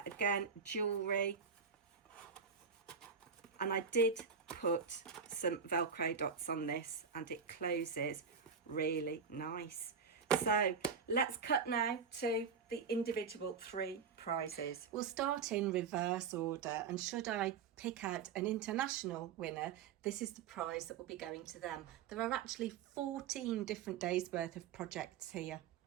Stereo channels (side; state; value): left; quieter; 6.1 dB